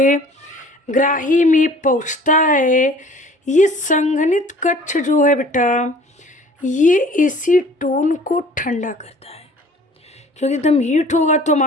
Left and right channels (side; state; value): both; normal; correlation 0.50